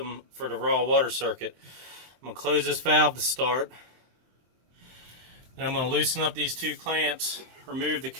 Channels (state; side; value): late; left; 23 ms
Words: for the raw water circuit. I'm going to close this valve to start. Then I'm going to loosen up these two clamps, remove the